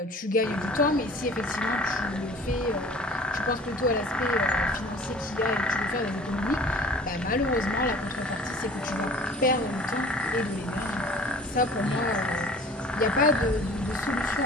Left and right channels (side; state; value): both; normal; correlation 0.46